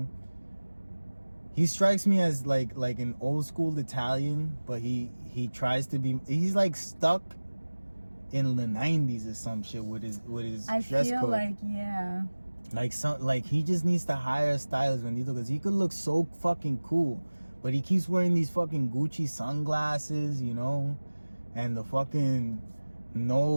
He strikes me as like an old school Italian, but he tries to be. He's like stuck in the 90s or some shit with his dress code. I feel like, yeah. Like he just needs to hire a stylist, Vin Diesel, because he could look so fucking cool, but he keeps wearing these fucking Gucci sunglasses, you know, and the fucking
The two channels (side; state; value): both; inverted; correlation -1.00